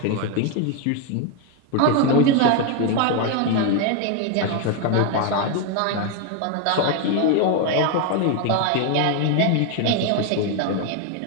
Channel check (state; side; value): different; both; correlation 0.01